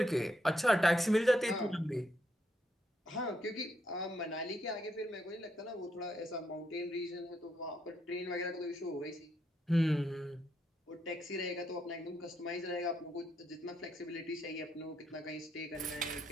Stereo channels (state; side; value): normal; both; correlation 0.77